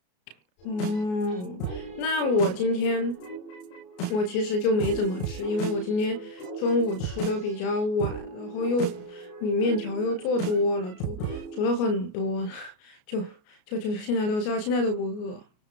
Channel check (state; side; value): late; right; 33 ms